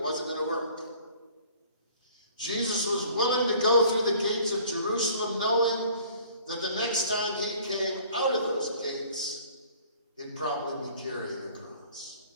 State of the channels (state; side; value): inverted; both; correlation -0.53